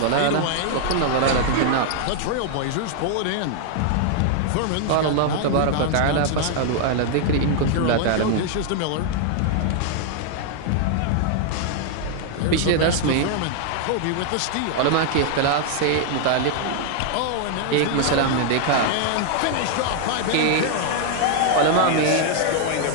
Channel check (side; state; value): both; different; correlation 0.00